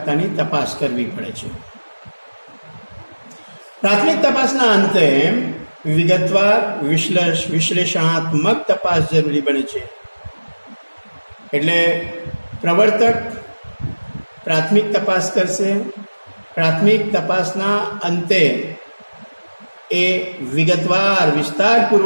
તપાસ કરવી પડે છે. પ્રાથમિક તપાસના અંતે વિગતવાર વિશ્લેષણાત્મક તપાસ જરૂરી બને છે. એટલે પ્રવર્તક પ્રાથમિક તપાસ કરશે. પ્રાથમિક તપાસના અંતે એ વિગતવાર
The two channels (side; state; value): both; inverted; correlation -1.00